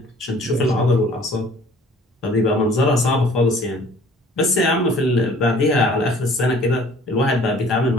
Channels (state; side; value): normal; both; correlation 0.52